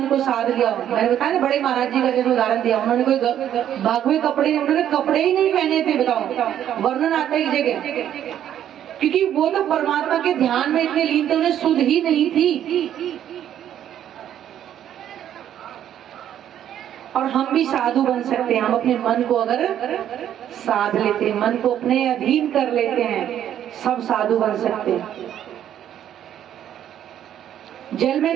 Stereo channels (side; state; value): left; quieter; 10.6 dB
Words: को साध लिया। मैंने बताया ना, बड़े महाराज जी का जैसे उदाहरण दिया, उन्होंने कोई भागवे कपड़े, उन्होंने कपड़े ही नहीं पहने थे, बताओ, वर्णन आता है एक जगह, क्योंकि वो तो परमात्मा के ध्यान में इतने लीन थे, उन्हें सुध ही नहीं थी। और हम भी साधु बन सकते हैं, हम अपने मन को अगर साध लेते हैं, मन को अपने अधीन कर लेते हैं, सब साधु बन सकते हैं। जल में